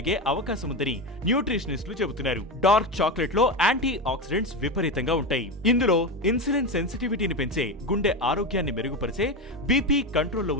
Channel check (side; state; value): both; normal; correlation 0.17